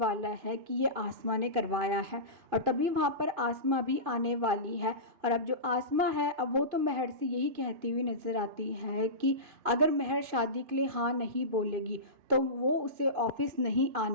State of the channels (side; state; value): left; late; 2.4 ms